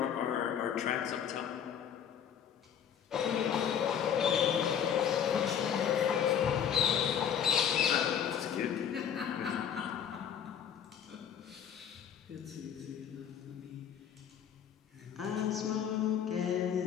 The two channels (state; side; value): quieter; right; 8.6 dB